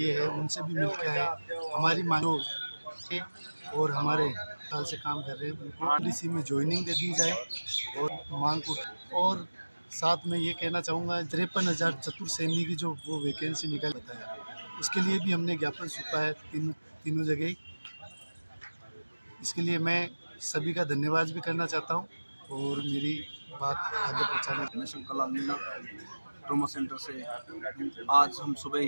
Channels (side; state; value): both; inverted; correlation -1.00